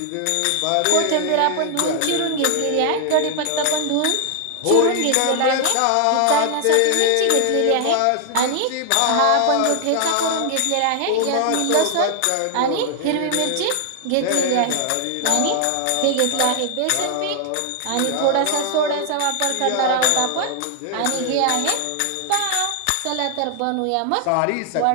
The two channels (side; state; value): both; different; correlation 0.00